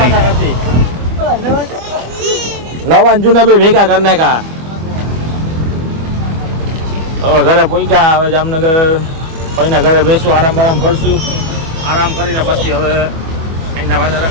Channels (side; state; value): left; late; 25 ms